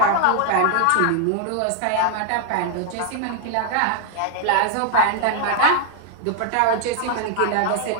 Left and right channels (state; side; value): different; both; correlation 0.00